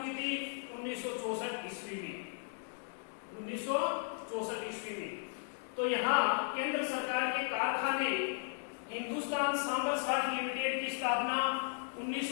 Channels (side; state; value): right; silent; 54 dB below the other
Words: थी? 1964 ईस्वी में। 1964 ईस्वी में। तो यहाँ केंद्र सरकार के कारखाने हिंदुस्तान सांबर साल्ट लिमिटेड की स्थापना